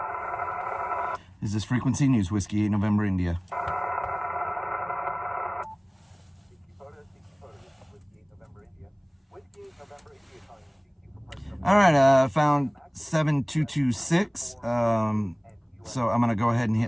Is this frequency news? Whiskey 8 November India. All right, found 7226. So I'm going to go ahead and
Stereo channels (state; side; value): identical; both; correlation 1.00